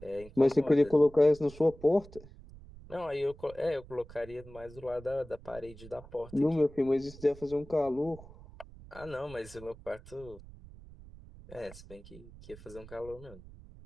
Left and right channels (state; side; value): noise; right; rumble, 18 dB below the sound